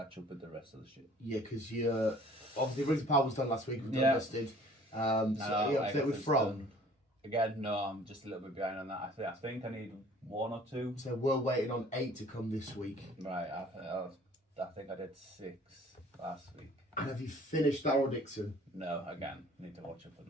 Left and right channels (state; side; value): normal; both; correlation 0.52